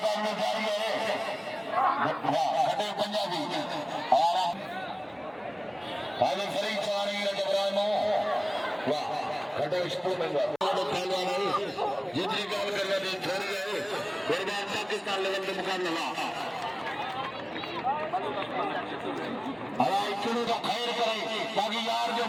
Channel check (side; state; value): both; identical; correlation 1.00